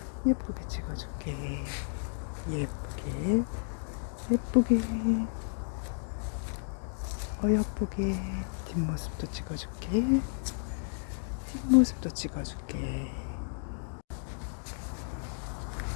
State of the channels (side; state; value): right; silent; digital silence